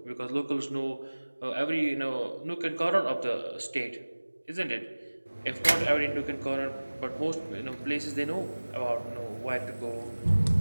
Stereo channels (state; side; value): inverted; both; correlation -1.00